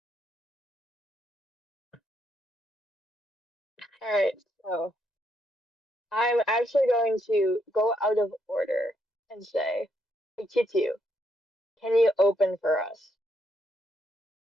Alright, so I'm actually going to go out of order and say, hey, Kitu, can you open for us?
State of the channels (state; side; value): normal; both; correlation 0.76